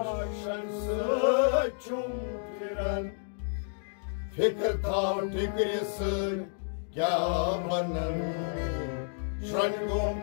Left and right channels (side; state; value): right; silent; digital silence